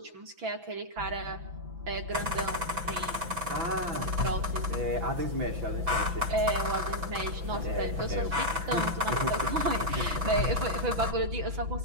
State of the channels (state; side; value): late; left; 6.0 ms